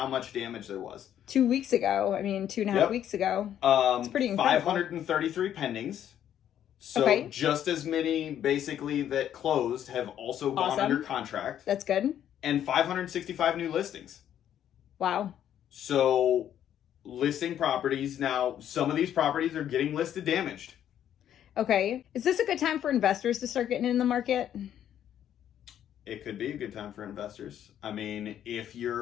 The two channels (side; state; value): right; quieter; 10.4 dB